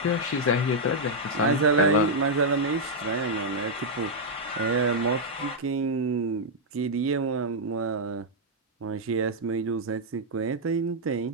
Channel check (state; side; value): normal; both; correlation -0.05